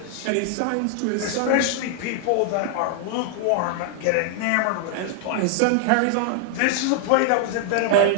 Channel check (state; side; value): different; both; correlation 0.00